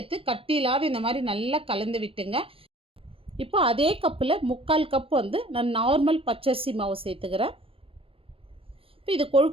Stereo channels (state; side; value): late; left; 0.27 ms